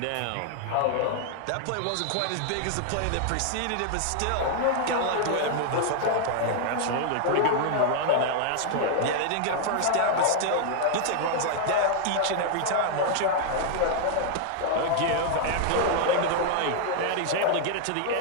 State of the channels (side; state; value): both; different; correlation 0.00